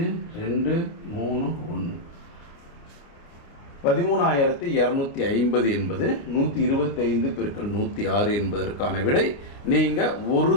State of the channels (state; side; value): late; right; 28 ms